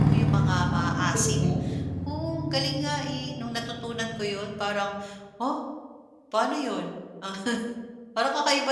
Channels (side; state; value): both; identical; correlation 1.00